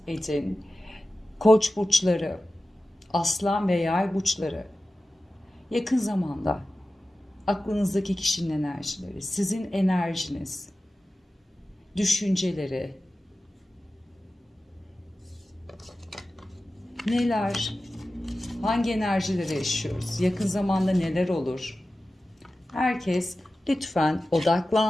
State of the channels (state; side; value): normal; both; correlation 0.94